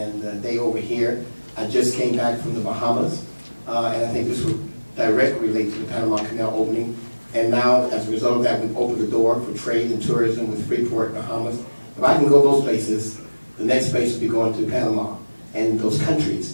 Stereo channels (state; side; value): inverted; both; correlation -1.00